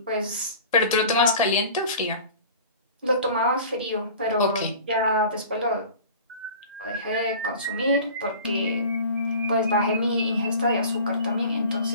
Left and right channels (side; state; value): both; inverted; correlation -0.41